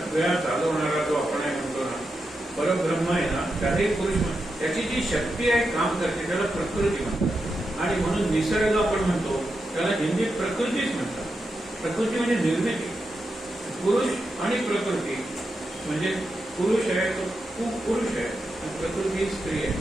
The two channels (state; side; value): normal; both; correlation 0.87